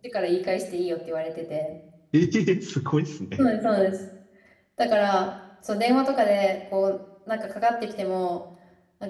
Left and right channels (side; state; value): both; identical; correlation 1.00